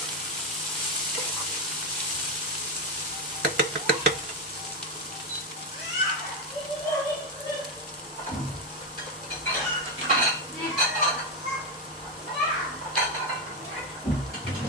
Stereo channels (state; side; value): normal; both; correlation 0.08